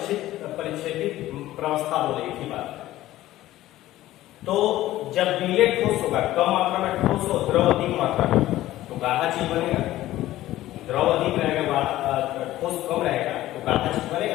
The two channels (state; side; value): quieter; right; 15.1 dB